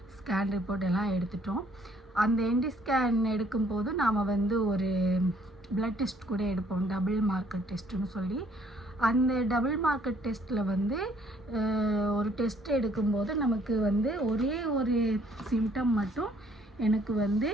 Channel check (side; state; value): both; normal; correlation 0.63